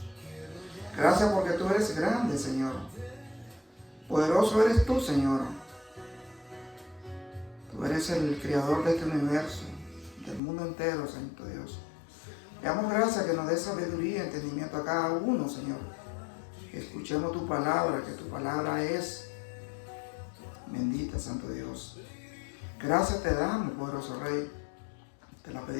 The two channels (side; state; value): right; drops out; at 10.4 s